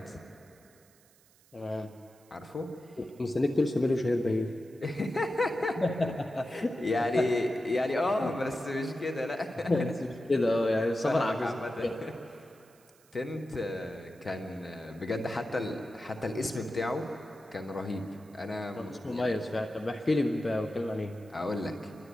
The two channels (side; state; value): right; noise; hiss, 29 dB below the sound